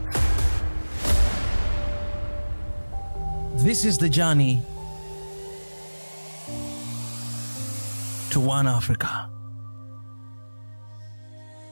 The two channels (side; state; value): both; inverted; correlation -1.00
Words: This is the journey to One Africa.